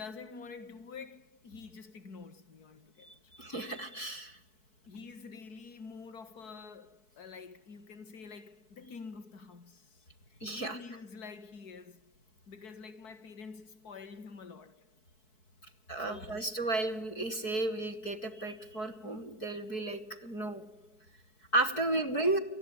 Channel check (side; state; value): right; late; 4.6 ms